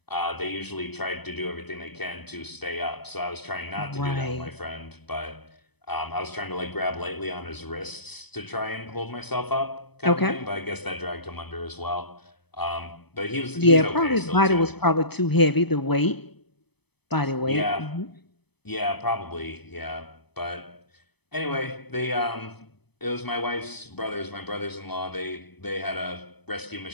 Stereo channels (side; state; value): right; late; 0.98 ms